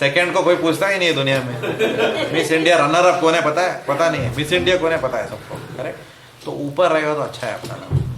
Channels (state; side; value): identical; both; correlation 1.00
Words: को कोई पूछता ही नहीं है दुनिया में. मिस इंडिया रनर अप कौन है पता है? पता नहीं है. मिस इंडिया कौन है पता है सबको. करेक्ट. तो ऊपर रहेगा तो अच्छा है अपना नाम.